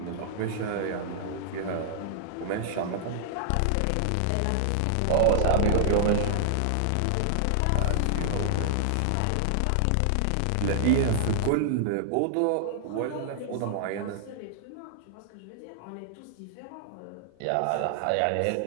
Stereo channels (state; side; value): different; both; correlation -0.01